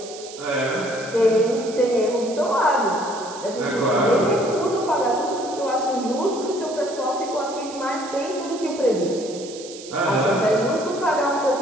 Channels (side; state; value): right; noise; hiss, 15 dB below the sound